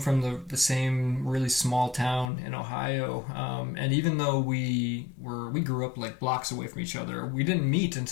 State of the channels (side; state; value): right; drops out; at 2.3 s